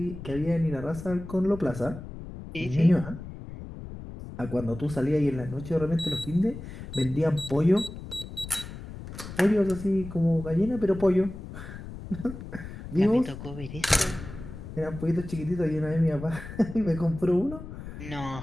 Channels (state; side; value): noise; left; rumble, 11 dB below the sound